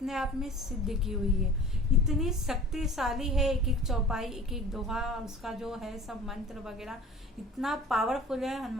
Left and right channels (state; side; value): normal; both; correlation 0.43